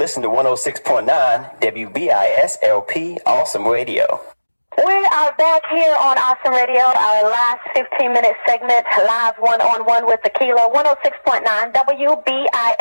to 106.9 WBISLP Awesome Radio. We are back here on Awesome Radio, our last 15-minute segment, Live One-on-One with Akila, 106.9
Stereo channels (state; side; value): inverted; both; correlation -1.00